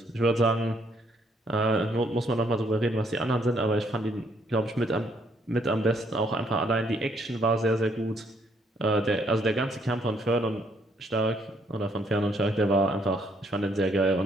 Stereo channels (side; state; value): both; normal; correlation 0.69